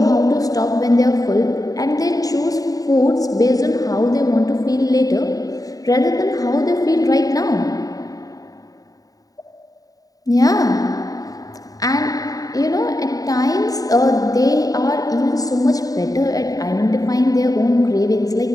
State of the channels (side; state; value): right; late; 0.18 ms